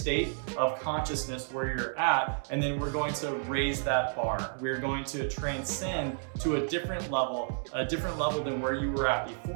of consciousness where you're at, and then we're going to raise that bar. We're going to transcend to a different level than where you were at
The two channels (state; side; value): silent; left; digital silence